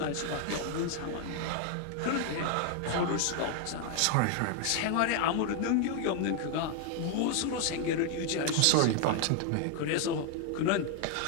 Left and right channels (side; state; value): both; different; correlation 0.00